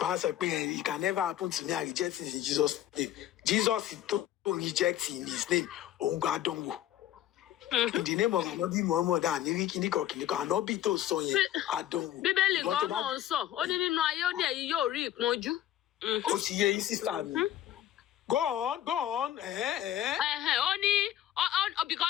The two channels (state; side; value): quieter; right; 12.3 dB